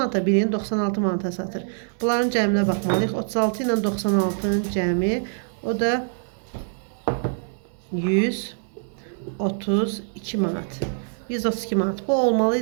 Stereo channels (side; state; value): left; silent; digital silence